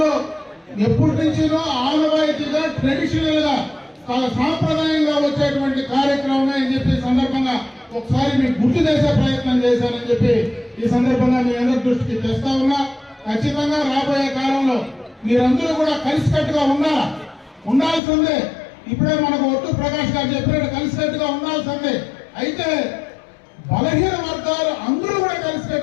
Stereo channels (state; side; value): drops out; right; at 18.0 s